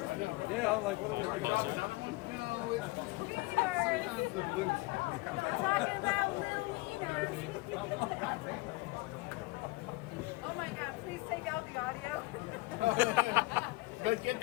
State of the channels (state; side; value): quieter; right; 22.3 dB